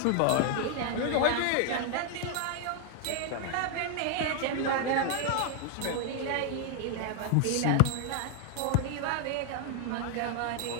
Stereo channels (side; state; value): both; different; correlation 0.00